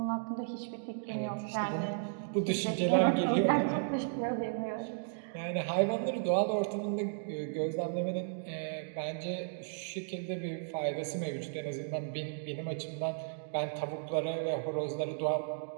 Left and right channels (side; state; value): left; silent; digital silence